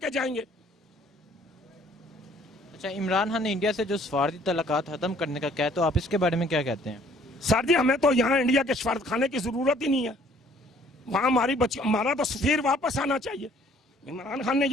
جائیں گے. اچھا, عمران خان نے انڈیا سے جو سفارتی تعلقات ختم کرنے کا کہا, تو آپ اس کے بارے میں کیا کہتے ہیں؟ سر جی, ہمیں تو یہاں انڈیا کے سفارت خانے کی ضرورت ہی نہیں ہے. وہاں ہمارا تو سفیر واپس آنا چاہیے. عمران خان نے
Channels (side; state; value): both; normal; correlation 0.59